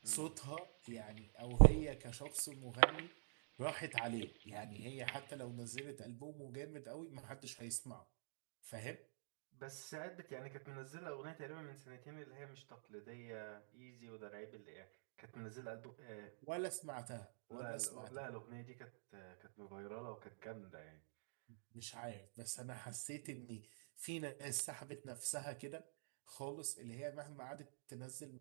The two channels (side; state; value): left; silent; digital silence